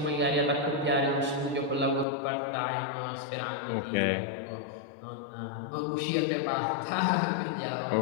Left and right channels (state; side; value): drops out; right; at 2.1 s